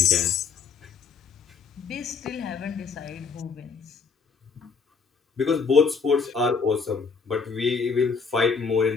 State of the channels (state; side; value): quieter; right; 5.5 dB